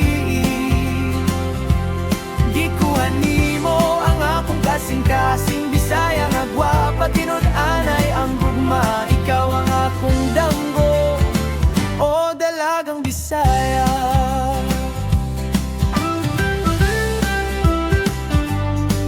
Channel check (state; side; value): identical; both; correlation 1.00